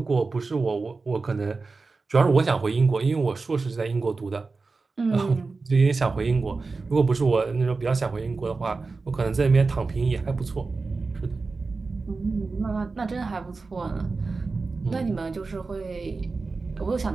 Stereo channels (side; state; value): left; quieter; 4.0 dB